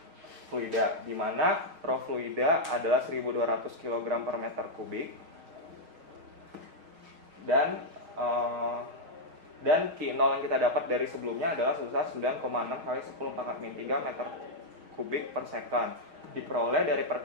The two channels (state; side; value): late; left; 6.3 ms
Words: fluida, di mana rho fluida adalah 1200 kg per meter kubik dan Q0 yang kita dapat dari sebelumnya adalah sebesar 9,6 kali 10⁻³ meter kubik per second. Diperoleh dari